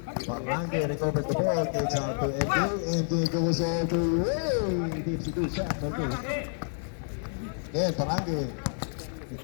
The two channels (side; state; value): right; silent; 59 dB below the other